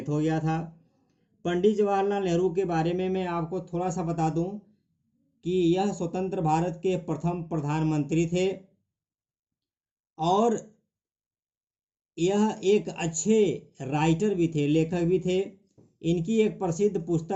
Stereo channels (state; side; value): identical; both; correlation 1.00